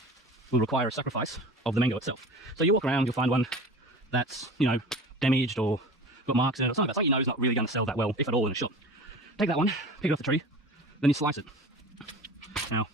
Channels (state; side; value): normal; both; correlation 0.37